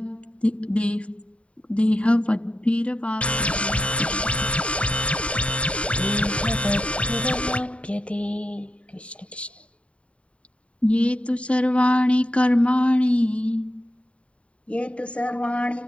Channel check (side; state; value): right; late; 0.061 ms